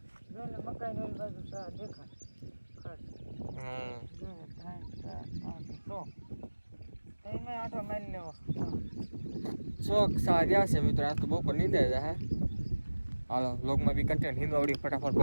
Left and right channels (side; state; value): both; inverted; correlation -1.00